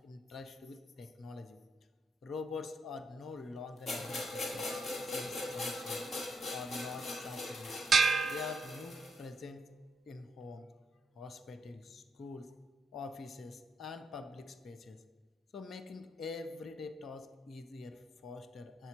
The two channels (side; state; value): both; normal; correlation 0.79